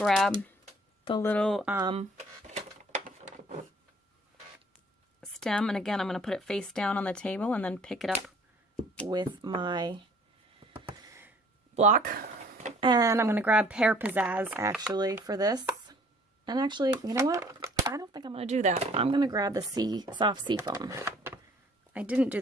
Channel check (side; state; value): both; normal; correlation 0.56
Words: the little stem, and again I'm going to put it face down on the table and then pick it up with my block. And I'm going to grab Pear Pizzazz actually for this. And actually, you know what? I don't think I'm going to do that. I'm going to grab the soft seafoam. I didn't do